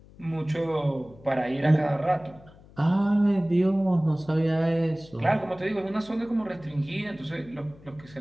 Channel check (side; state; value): left; noise; hum, 23 dB below the sound